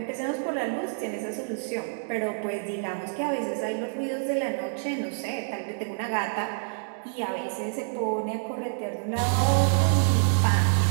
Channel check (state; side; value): silent; left; digital silence